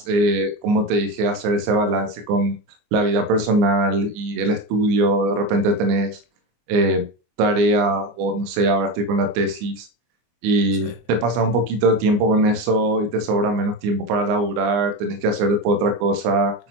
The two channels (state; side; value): late; left; 24 ms